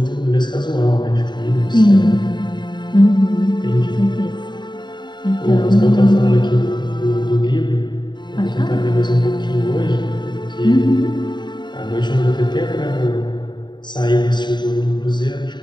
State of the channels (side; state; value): right; late; 0.22 ms